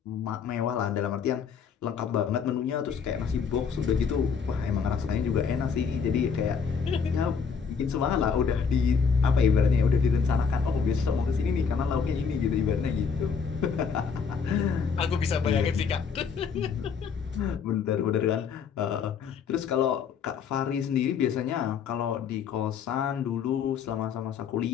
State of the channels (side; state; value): right; quieter; 6.3 dB